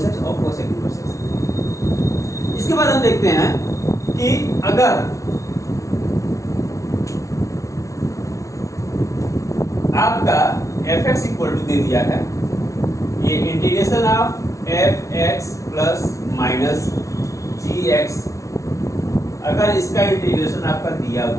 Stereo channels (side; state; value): right; late; 0.15 ms